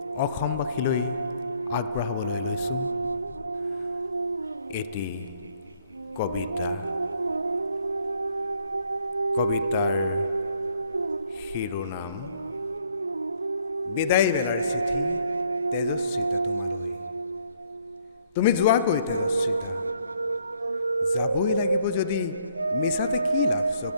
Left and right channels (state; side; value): inverted; both; correlation -0.66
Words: অসমবাসীলৈ আগবঢ়াবলৈ লৈছোঁ এটি কবিতা। কবিতাৰ শিৰোনাম বিদায় বেলাৰ চিঠি তেজস্বিতা তোমালৈ। তুমি যোৱাকৈ তেজস্বিতা, যাবই লাগিব যদি মিছাতে কি লাভ